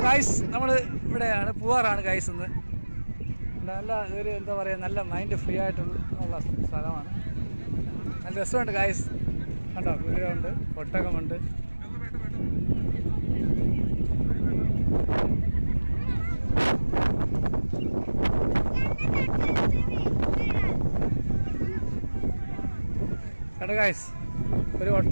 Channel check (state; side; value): inverted; both; correlation -1.00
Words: ഗായ്സ് നമ്മൾ ഇവിടെയാണ് പൂവാറാണ് ഗായ്സ്. ഇന്ന് നല്ല ഒരു എന്താ പറയുക, നല്ല മൈൻഡ് ഫ്രീ ആയിട്ടുള്ള സ്ഥലമാണ്. നല്ല രസമുണ്ട് ഗായ്സ്. കണ്ടോ, കുതിരയുണ്ട്, ഒട്ടകമുണ്ട്. കണ്ടോ ഗായ്സ്, ഒരു